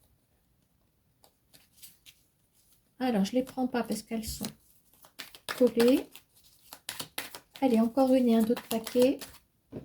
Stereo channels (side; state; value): both; identical; correlation 1.00